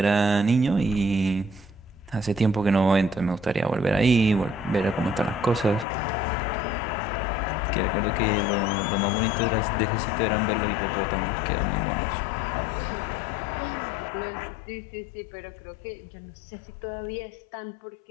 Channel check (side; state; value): right; drops out; at 5.9 s